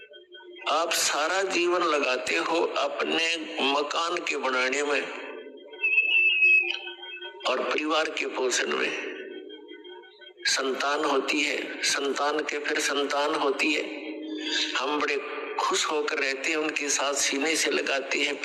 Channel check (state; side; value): identical; both; correlation 1.00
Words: आप सारा जीवन लगाते हो अपने मकान के बनाने में और परिवार के पोषण में। संतान होती है, संतान के फिर संतान होती है, हम बड़े खुश होकर रहते हैं, उनके साथ सीने से लगाते हैं,